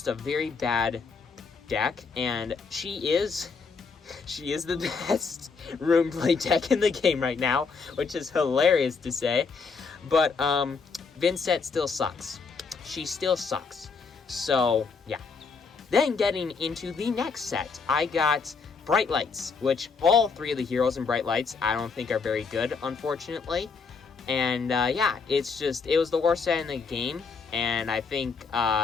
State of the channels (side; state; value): right; quieter; 5.0 dB